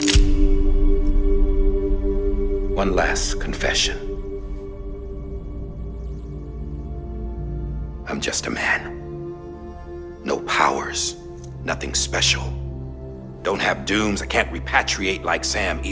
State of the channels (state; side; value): identical; both; correlation 1.00